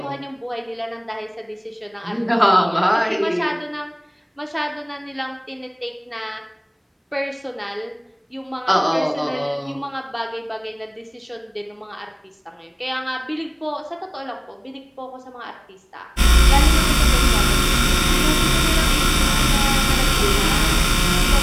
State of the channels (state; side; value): identical; both; correlation 1.00